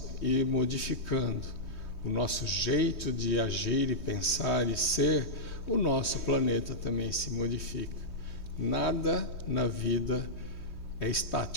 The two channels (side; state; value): right; late; 3.2 ms